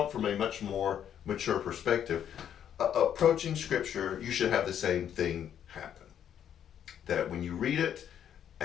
it from a much more mature perspective. Approaching Scripture, you should have the same thing happen. That when you read it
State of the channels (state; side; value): quieter; right; 9.5 dB